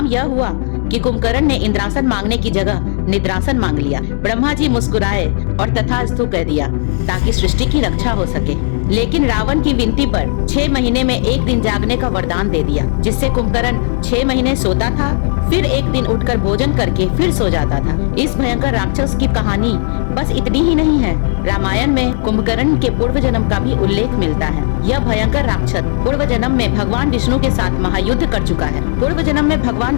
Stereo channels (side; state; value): right; silent; digital silence